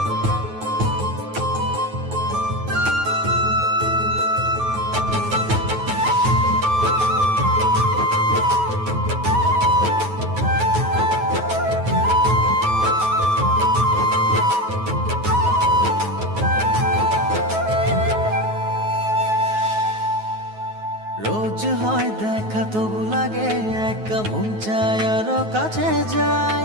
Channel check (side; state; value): left; late; 9.3 ms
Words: রোজ হয় দেখা তবু লাগে একা, মন চায় আরো কাছে যাই।